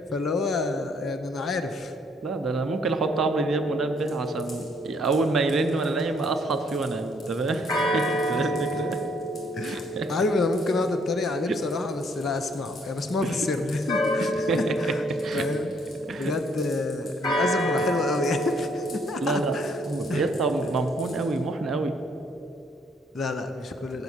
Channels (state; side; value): normal; both; correlation 0.66